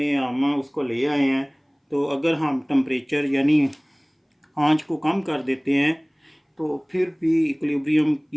हम उसको ले आए हैं, तो अगर हम टेम्परेचर यानी आंच को कम कर देते हैं तो फिर भी इक्विलिब्रियम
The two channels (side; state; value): both; identical; correlation 1.00